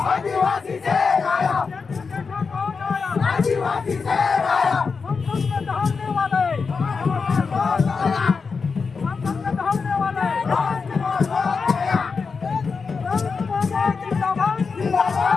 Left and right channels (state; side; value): quieter; right; 5.0 dB